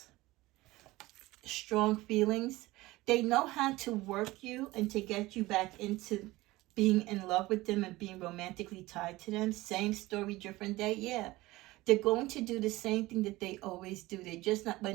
Strong feelings. They know how to work you and to get you back into being in love with them and being romantically tied to them. Same story, different day. Yeah. They're going to do the same thing that they always do. They just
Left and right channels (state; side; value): quieter; left; 19.2 dB